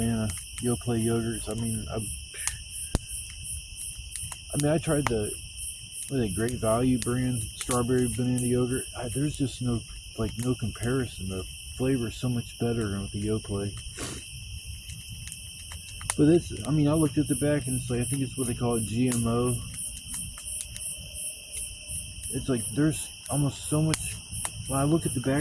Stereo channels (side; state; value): both; identical; correlation 1.00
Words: Yoplait yogurts. I tried the Great Value brand strawberry banana yogurt. There's just no comparison. The flavor is so much better than with the Yoplait. But I looked at the back and it's like, I think it's what they call it, GMO. It's like there's almost so much. When I look at the